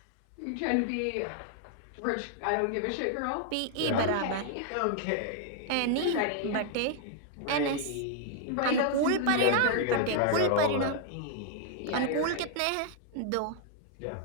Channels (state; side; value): different; both; correlation 0.00